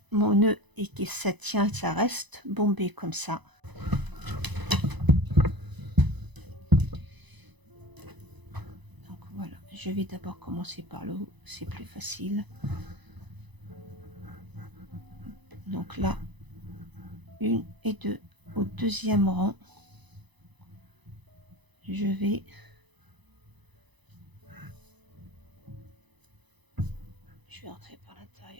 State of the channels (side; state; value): left; late; 1.0 ms